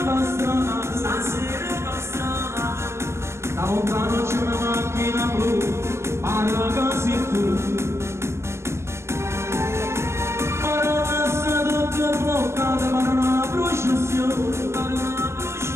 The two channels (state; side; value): late; left; 0.13 ms